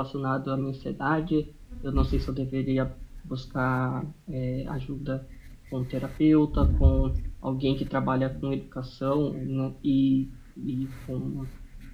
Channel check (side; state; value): both; identical; correlation 1.00